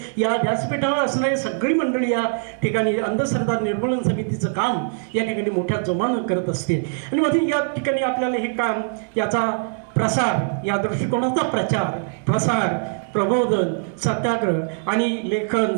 या व्यासपीठावर असणारी सगळी मंडळी या ठिकाणी अंधश्रद्धा निर्मूलन समितीचं काम या ठिकाणी मोठ्या जोमानं करत असते. आणि मध्ये या ठिकाणी आपल्याला हे काम, याचा प्रसार, या दृष्टिकोनाचा प्रचार प्रसार, प्रबोधन, सत्याग्रह आणि लेखन,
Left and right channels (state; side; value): silent; left; digital silence